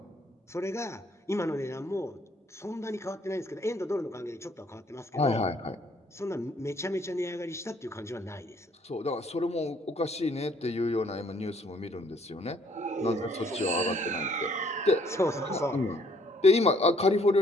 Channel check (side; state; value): both; normal; correlation 0.64